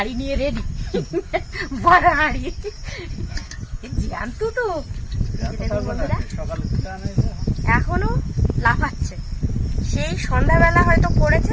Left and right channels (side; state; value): both; identical; correlation 1.00